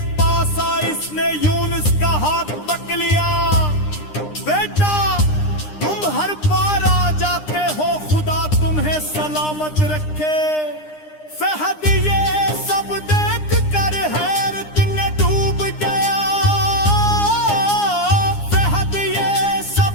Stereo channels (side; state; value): right; late; 9.8 ms